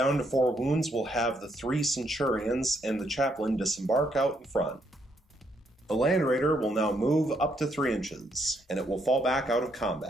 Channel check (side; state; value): both; normal; correlation 0.74